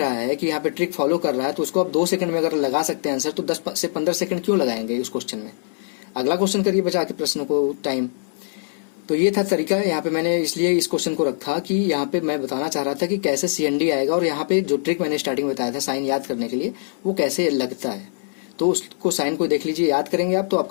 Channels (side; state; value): right; silent; 64 dB below the other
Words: है कि यहाँ पे ट्रिक फॉलो कर रहा है तो उसको आप 2 सेकंड में अगर लगा सकते हैं आंसर, तो 10 से 15 सेकंड क्यों लगाएंगे उस क्वेश्चन में? अगला क्वेश्चन करिए बचा के प्रश्नों को टाइम। तो ये था तरीका। यहाँ पे मैंने इसलिए इस क्वेश्चन को रखा कि यहाँ पे मैं बताना चाह रहा था कि कैसे CND आएगा, और यहाँ पे जो ट्रिक मैंने स्टार्टिंग में बताया था साइन याद करने के लिए, वो कैसे लगता है। तो उसको साइन को देख लीजिए, याद करेंगे आप तो